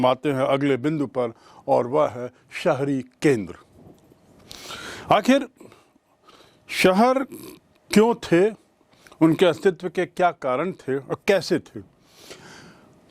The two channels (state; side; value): identical; both; correlation 1.00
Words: आते हैं अगले बिंदु पर, और वह है शहरी केंद्र। आखिर शहर क्यों थे, उनके अस्तित्व के क्या कारण थे और कैसे थे?